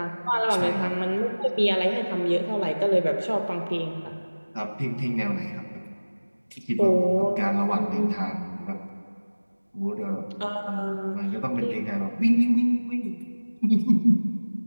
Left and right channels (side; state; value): both; inverted; correlation -1.00